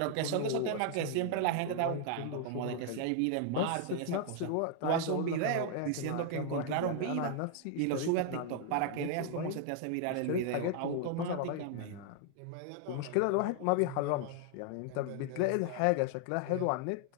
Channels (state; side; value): different; both; correlation 0.00